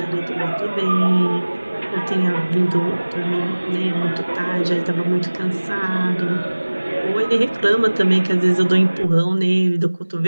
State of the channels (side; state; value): both; inverted; correlation -1.00